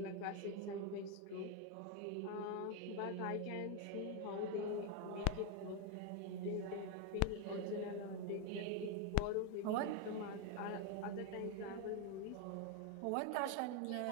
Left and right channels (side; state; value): both; different; correlation 0.01